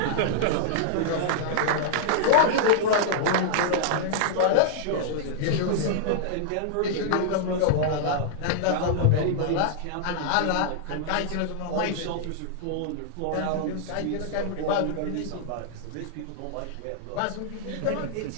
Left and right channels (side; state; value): both; different; correlation -0.01